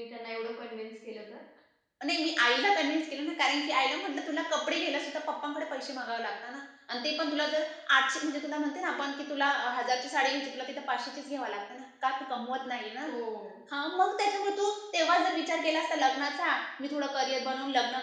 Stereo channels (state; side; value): identical; both; correlation 1.00